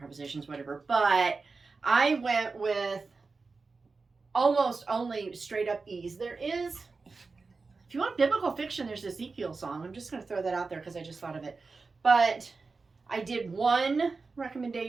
whatever. But I went with almost only straight up E's. There is, if you want biblical fiction, there's Ezekiel song. I'm just going to throw that out there because I just thought of it. But I did one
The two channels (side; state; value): left; quieter; 4.2 dB